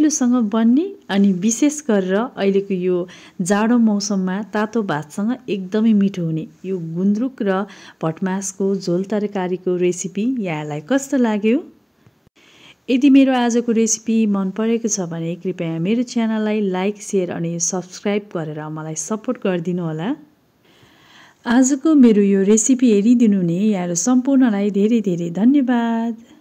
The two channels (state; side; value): identical; both; correlation 1.00